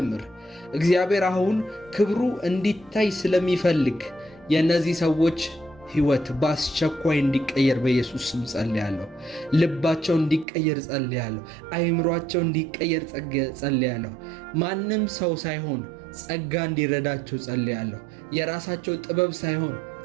እግዚአብሔር አሁን ክብሩ እንዲታይ ስለሚፈልግ የእነዚህ ሰዎች ሕይወት በአስቸኳይ እንዲቀየር በኢየሱስ ስም ጸልያለሁ። ልባቸው እንዲቀየር ጸልያለሁ። አይምሯቸው እንዲቀየር ጸልያለሁ። ማንም ሰው ሳይሆን ጸጋ እንዲረዳቸው ጸልያለሁ። የራሳቸው ጥበብ ሳይሆን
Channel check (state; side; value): drops out; left; at 10.5 s